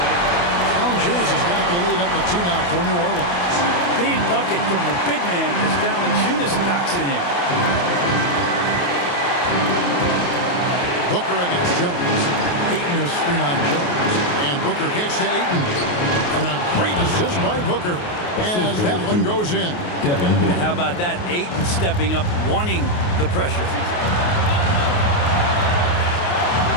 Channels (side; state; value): right; late; 28 ms